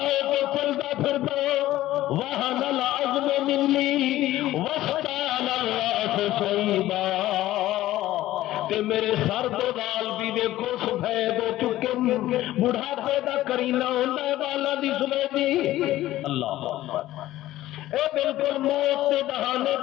کے چلتا پھرتا وہن العظم منی واشتعل الرأس شیبا تے میرے سر دے وال بھی دیکھو سفید ہو چکے بڑھاپے دا کرینہ ہوندا ہے والاں دی سفیدی اللہ اے بالکل موت کے بہانے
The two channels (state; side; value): quieter; right; 15.1 dB